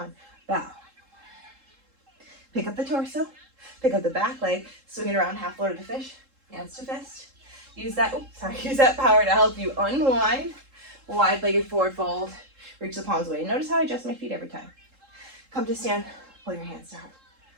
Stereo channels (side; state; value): left; late; 3.7 ms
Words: Bow. Pick up the torso. Pick up the back leg. Swing it around half load of the fish. Hands to fist. Use that power to help you unwind. Wide-legged forward fold. Reach the palms away. Notice how I adjust my feet every time. Come to stand. Pull your hands to heart.